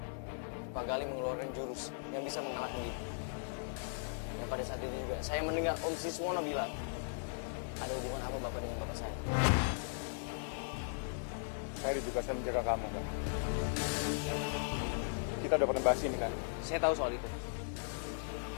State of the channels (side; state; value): right; silent; digital silence